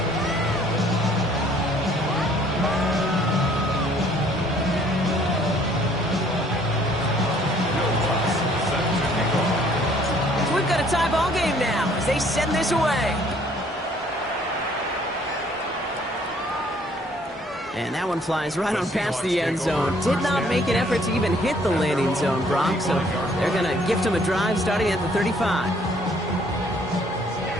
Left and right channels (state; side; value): normal; both; correlation 0.60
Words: they send this away. And that one flies right on past the end zone. Did not make an effort to even hit the landing zone, Brock. So they're going to gift him a drive starting at the 35.